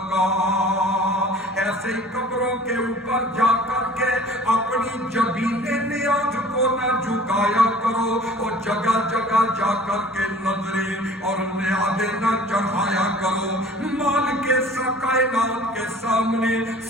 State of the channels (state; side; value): normal; both; correlation 0.47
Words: ایسے ہی قبروں کے اوپر جا کر کے اپنی جبین نیاز کو نہ جھکایا کرو، اور جگہ جگہ جا کر کے نظریں اور نیازیں نہ چڑھایا کرو، مال کے کائنات کے سامنے